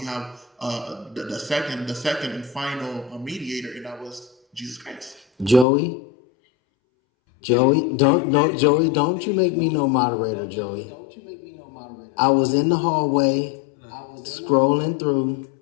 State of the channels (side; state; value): right; drops out; at 5.7 s